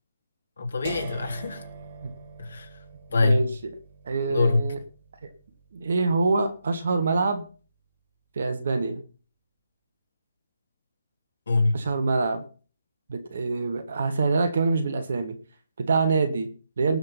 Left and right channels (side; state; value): both; inverted; correlation -0.83